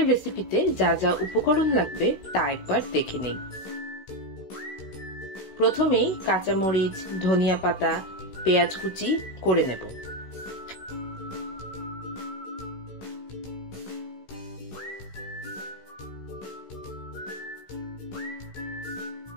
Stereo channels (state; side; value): late; right; 16 ms